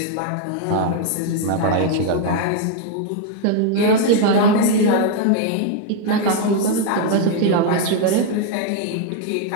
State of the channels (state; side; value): different; both; correlation 0.00